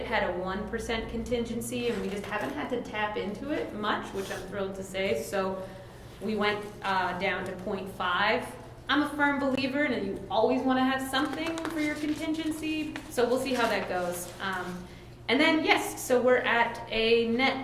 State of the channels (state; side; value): identical; both; correlation 1.00